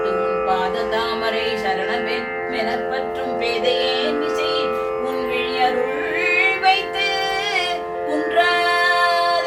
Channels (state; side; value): identical; both; correlation 1.00